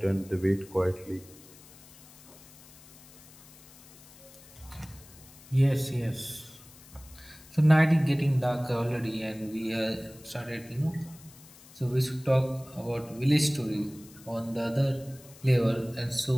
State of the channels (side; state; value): left; noise; hiss, 22 dB below the sound